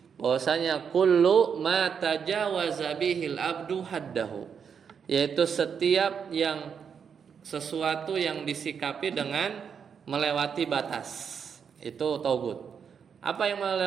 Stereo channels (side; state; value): left; quieter; 6.9 dB